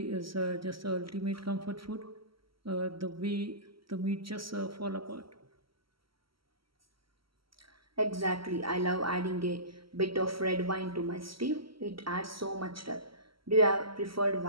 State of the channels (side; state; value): left; late; 0.75 ms